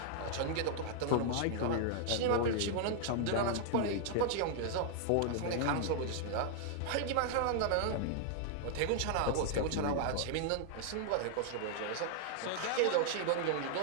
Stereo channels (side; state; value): both; different; correlation -0.01